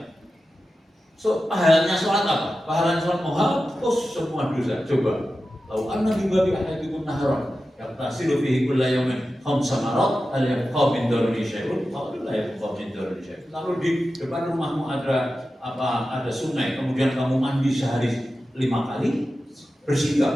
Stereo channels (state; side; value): normal; both; correlation 0.93